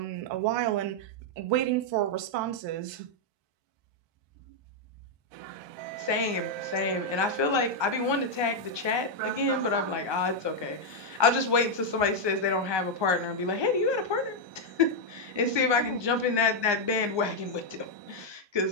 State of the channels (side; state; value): left; late; 1.2 ms